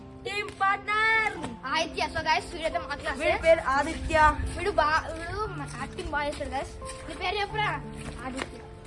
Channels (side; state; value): both; identical; correlation 1.00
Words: team partner Aditya. So guys వీడైతే మా క్లాస్. వీడి పేరు ఆదిత్య. వీడు యాక్టింగ్ బాగా చేస్తాడు గైస్. నీ పేరు చెప్పురా. ఆదిత్య.